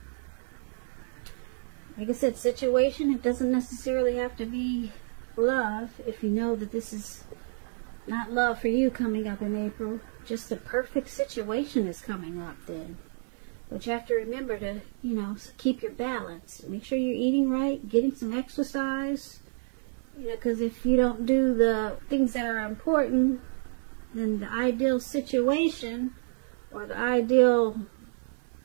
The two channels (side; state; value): left; silent; digital silence